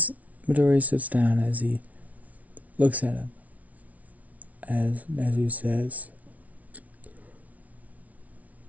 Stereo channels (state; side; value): late; left; 0.070 ms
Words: Midoriya sits down, as he looks at him, as Nezu says,